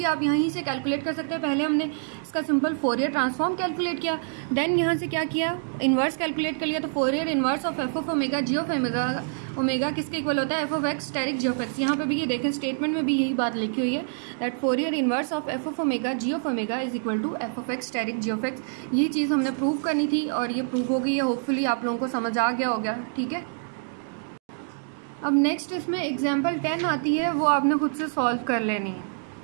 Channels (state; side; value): silent; left; digital silence